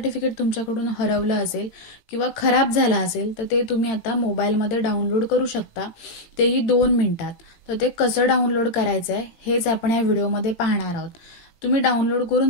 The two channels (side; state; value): right; late; 18 ms